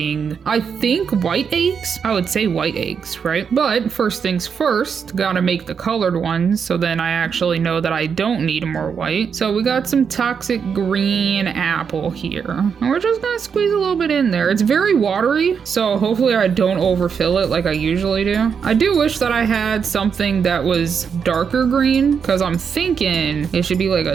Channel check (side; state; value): left; quieter; 6.6 dB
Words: I think, white eggs? I would say white eggs, right? But first things first, gotta make the colored ones, so then I actually know that I don't need more white. So we got some toxic green apple here, and we're just gonna squeeze a little bit in there. It's very watery, so hopefully I don't overfill it like I usually do. I do wish that I had something that was darker green, because I'm thinking it should be like a